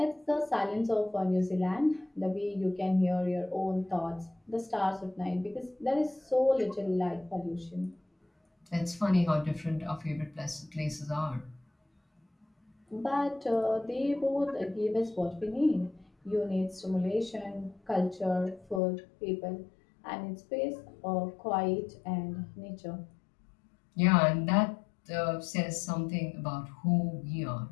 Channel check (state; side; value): drops out; right; at 18.8 s